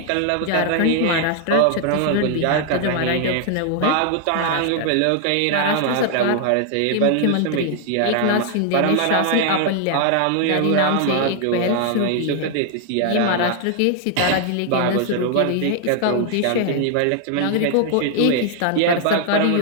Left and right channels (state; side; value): different; both; correlation 0.00